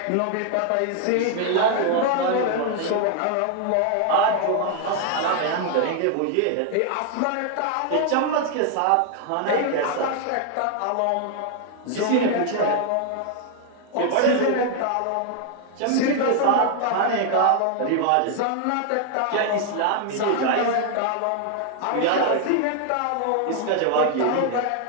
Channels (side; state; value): both; different; correlation 0.00